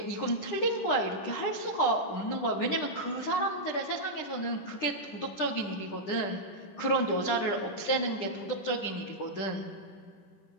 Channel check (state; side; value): late; right; 9.9 ms